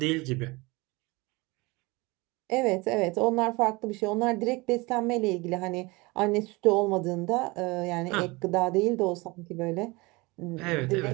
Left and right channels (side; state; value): left; quieter; 24.2 dB